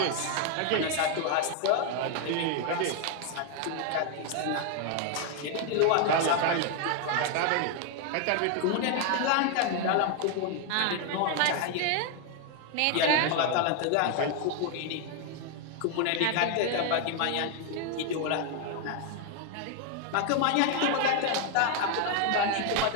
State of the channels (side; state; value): both; different; correlation 0.01